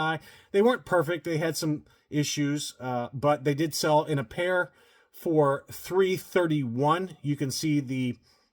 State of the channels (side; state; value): both; identical; correlation 1.00